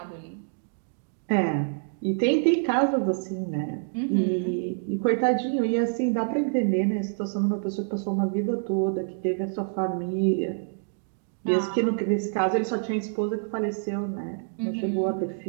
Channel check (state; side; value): silent; left; digital silence